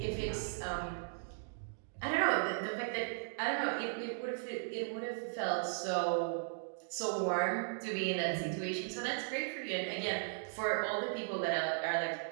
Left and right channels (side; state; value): left; silent; digital silence